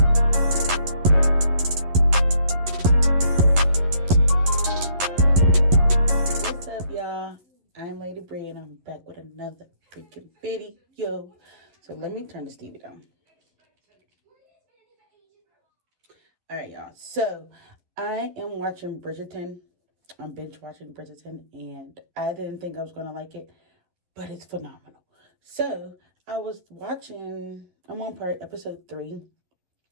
What's up, y'all? I'm Lady Bree, and I'm back with another freaking video. So let me turn this TV down. All right, y'all. So I am watching Bridgerton. I'm binge watching Bridgerton, and I didn't think I was gonna like it, but it's phenomenal. So I was watching. I'm on episode 3,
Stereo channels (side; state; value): left; late; 11 ms